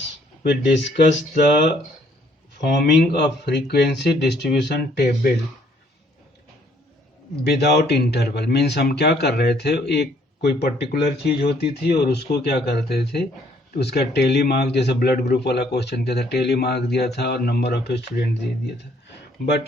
we discussed the forming of frequency distribution table without interval. Means हम क्या कर रहे थे, एक कोई पर्टिकुलर चीज होती थी और उसको क्या करते थे, उसका टेली मार्क, जैसे ब्लड ग्रुप वाला क्वेश्चन क्या था, टेली मार्क दिया था और नंबर ऑफ स्टूडेंट दे दिया था।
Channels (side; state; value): both; normal; correlation 0.64